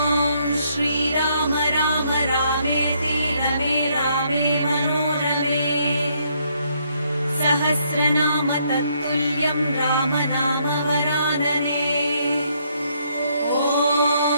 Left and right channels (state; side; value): inverted; both; correlation -0.71